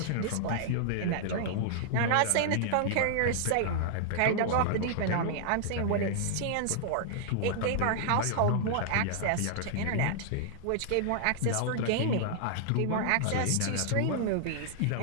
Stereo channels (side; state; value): both; different; correlation -0.01